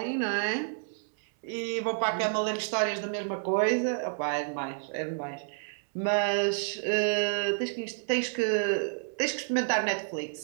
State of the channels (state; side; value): silent; left; 58 dB below the other